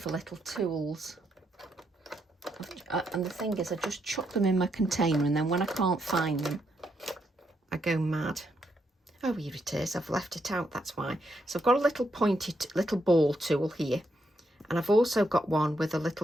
little tools, and the thing is I just chuck them in my container, and then when I can't find them I go mad. Oh, here it is, I've left it out, that's why. So I've got a little pointed little ball tool here, and I've also got one with a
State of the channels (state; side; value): normal; both; correlation 0.79